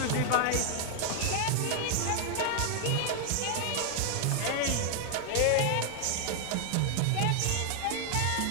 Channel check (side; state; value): both; different; correlation 0.00